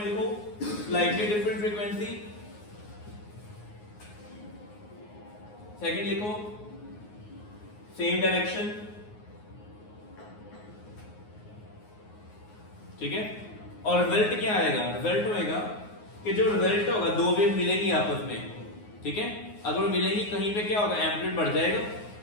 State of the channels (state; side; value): late; right; 9.6 ms